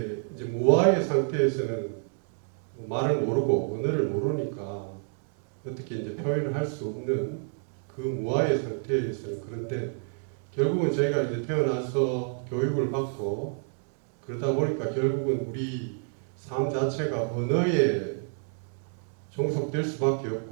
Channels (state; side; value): silent; left; 59 dB below the other